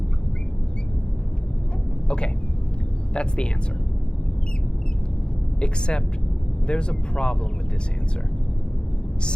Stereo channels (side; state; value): right; late; 0.051 ms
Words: Okay, that's the answer. Except there's a problem with this answer.